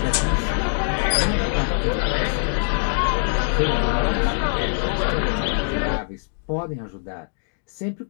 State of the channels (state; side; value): silent; right; digital silence